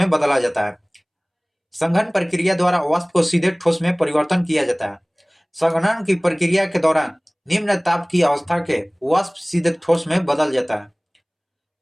बदला जाता है। संघन प्रक्रिया द्वारा वाष्प को सीधे ठोस में परिवर्तन किया जाता है। संघनन की प्रक्रिया के दौरान निम्न ताप की अवस्था के वाष्प सीधे ठोस में बदल जाता है।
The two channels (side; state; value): both; identical; correlation 1.00